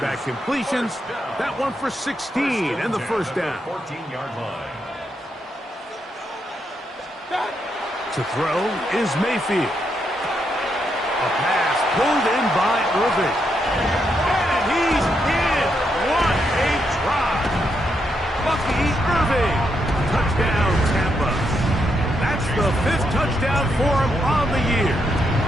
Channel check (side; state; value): both; normal; correlation 0.80